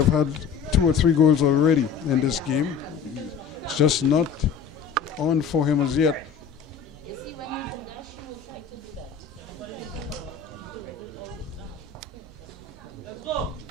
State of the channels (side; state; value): right; quieter; 6.6 dB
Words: had 2 or 3 goals already in this game. It's just not on for him as yet.